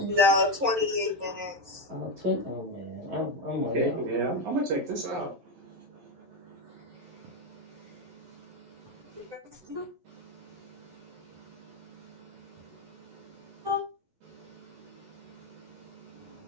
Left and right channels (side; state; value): left; late; 11 ms